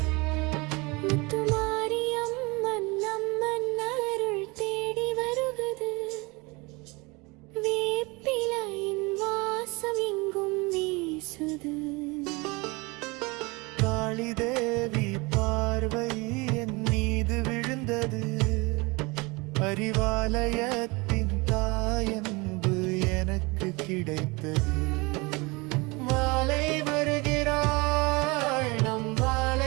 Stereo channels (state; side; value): quieter; left; 25.9 dB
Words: முத்துமாரியம்மன் அம்மன் அருள் தேடி வருகுது. வேப்பிலையின் வாசம் எங்கும் வீசுது. காளி தேவி பார்வை என் மீது விழுந்தது. அறிவாலயத்தின் தாயன்பு எனக்கு கிடைத்தது. மாலை வருகிறாள், நம்